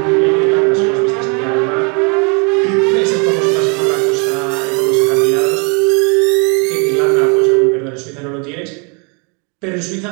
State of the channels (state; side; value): quieter; left; 34.4 dB